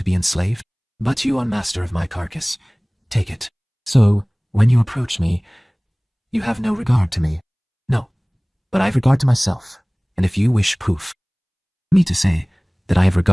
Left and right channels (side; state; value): both; identical; correlation 1.00